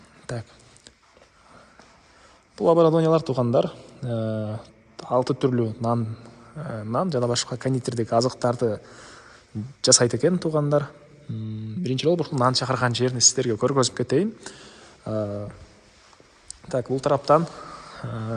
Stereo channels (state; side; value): identical; both; correlation 1.00